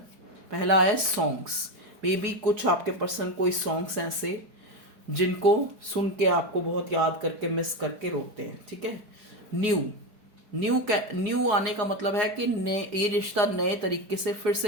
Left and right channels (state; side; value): late; left; 4.8 ms